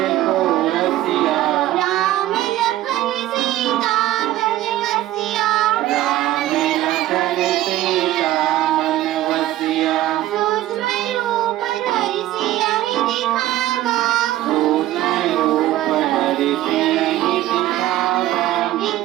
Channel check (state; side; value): quieter; left; 14.7 dB